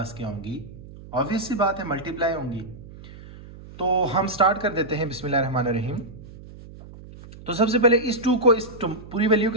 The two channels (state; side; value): noise; right; hum, 17 dB below the sound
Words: क्या होंगी, ऑब्वियस सी बात है मल्टीप्लाई होंगी। तो हम स्टार्ट कर देते हैं बिस्मिल्लाहिर्रहमानिर्रहीम। तो सबसे पहले इस 2 को इस पूरी वैल्यू